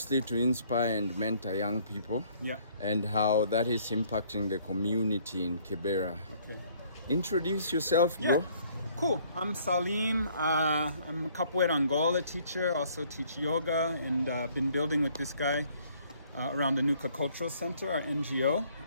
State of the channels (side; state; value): both; inverted; correlation -0.61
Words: to inspire and mentor young people. Yeah. And how that is impacting the community in Kibera. Okay. Introduce yourself, bro. Yeah. Cool. I'm Salim. I'm a Capoeira Angola teacher. Also teach yoga, and been building with this guy around the Nuka Cultural Center, our NGO.